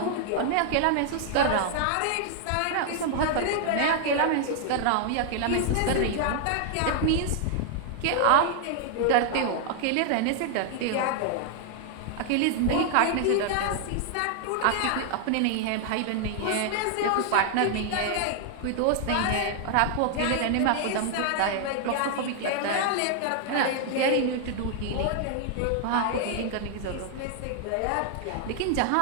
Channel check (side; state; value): both; different; correlation 0.00